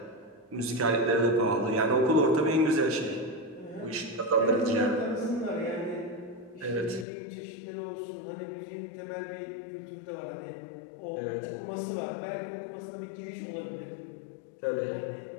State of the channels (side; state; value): right; drops out; at 7.1 s